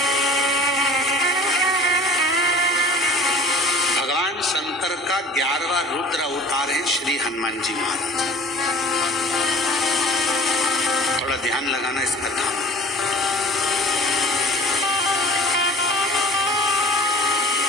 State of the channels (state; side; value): normal; both; correlation 0.46